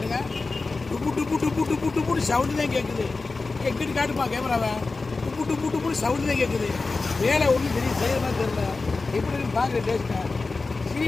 டுப்பு டுப்பு டுப்பு டுப்பு டுப்புன்னு சவுண்டு தான் கேட்குது. எங்கிட்டு காட்டுப்பா கேமராவை. டுப்பு டுப்பு டுப்புன்னு சவுண்டு தான் கேட்குது. வேலை ஒன்றும் தெரியும், செய்யறதா தெரியல. எப்படின்னு பார்க்குற டேஸ்ட்டை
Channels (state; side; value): quieter; right; 3.8 dB